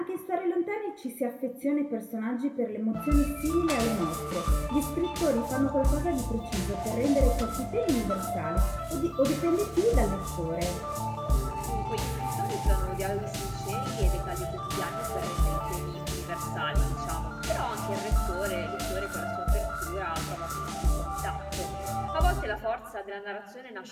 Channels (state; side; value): identical; both; correlation 1.00